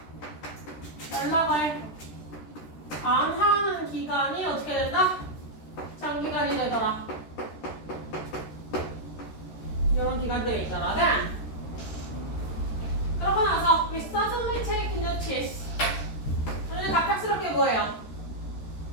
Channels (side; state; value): right; late; 13 ms